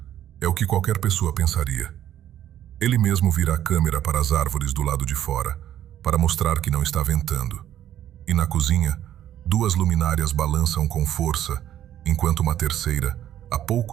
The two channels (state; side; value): quieter; left; 11.4 dB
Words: É o que qualquer pessoa pensaria. Ele mesmo vira a câmera para as árvores do lado de fora, para mostrar que não está ventando. E na cozinha, 2 luminárias balançam com força, enquanto uma terceira, a